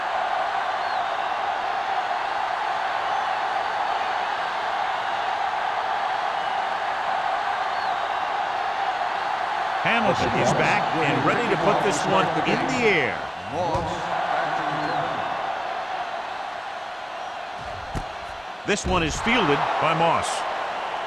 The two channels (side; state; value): both; identical; correlation 1.00